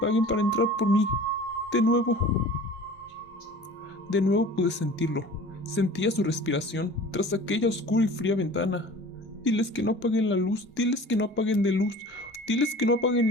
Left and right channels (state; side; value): normal; both; correlation 0.43